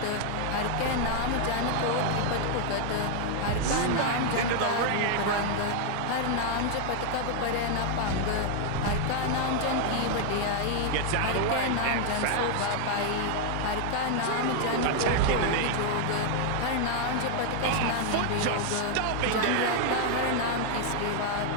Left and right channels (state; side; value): different; both; correlation 0.00